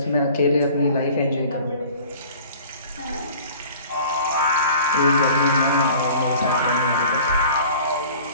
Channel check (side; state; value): both; inverted; correlation -0.46